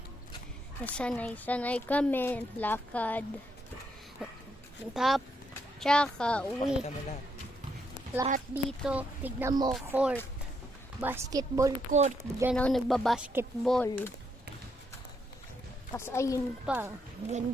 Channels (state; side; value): normal; both; correlation 0.77